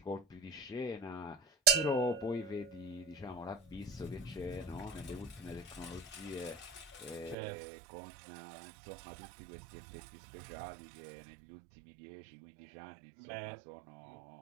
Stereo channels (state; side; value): drops out; left; at 7.4 s